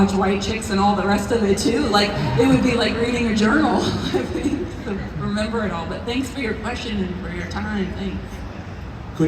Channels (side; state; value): both; identical; correlation 1.00